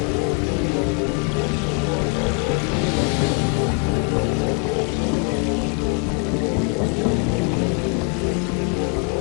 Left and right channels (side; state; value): right; quieter; 34.1 dB